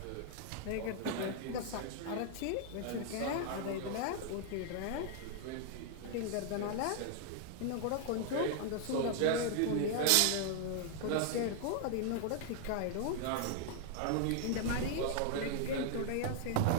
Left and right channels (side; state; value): both; different; correlation 0.00